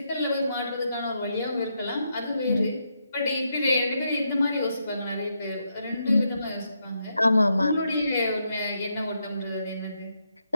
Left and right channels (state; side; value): inverted; both; correlation -0.80